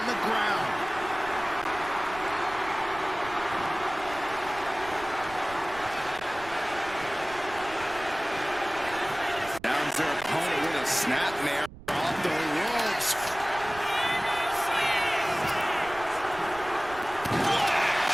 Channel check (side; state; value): right; noise; rumble, 17 dB below the sound